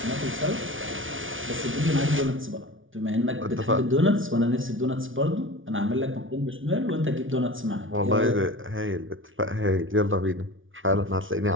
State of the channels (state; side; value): late; left; 0.57 ms